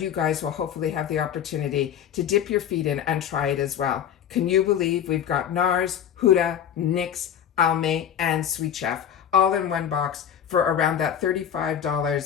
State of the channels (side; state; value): right; quieter; 9.1 dB